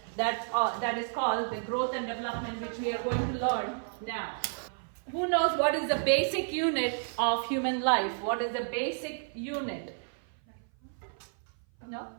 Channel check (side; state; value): left; silent; 56 dB below the other